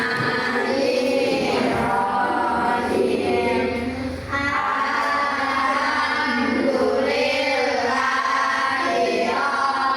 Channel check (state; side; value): identical; both; correlation 1.00